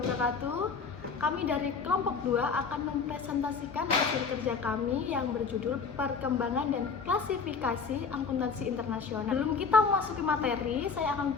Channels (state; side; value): quieter; right; 5.3 dB